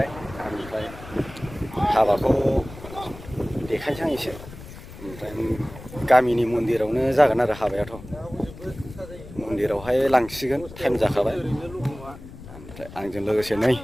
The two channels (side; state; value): left; noise; rumble, 15 dB below the sound